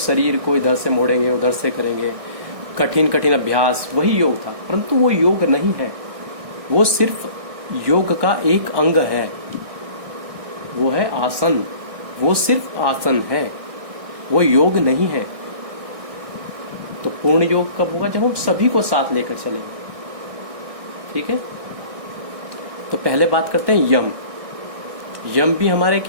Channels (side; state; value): left; late; 1.6 ms